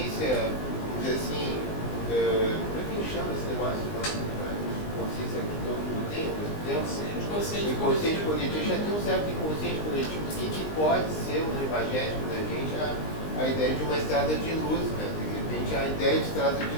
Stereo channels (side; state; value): right; late; 19 ms